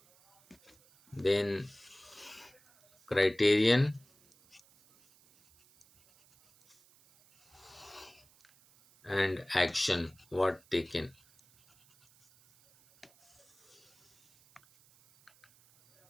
then criterion, and action what taken.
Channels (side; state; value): right; noise; hiss, 30 dB below the sound